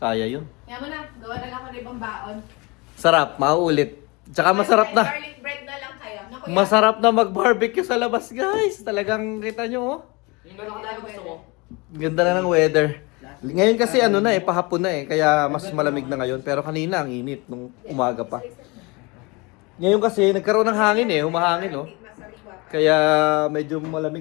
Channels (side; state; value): right; quieter; 26.5 dB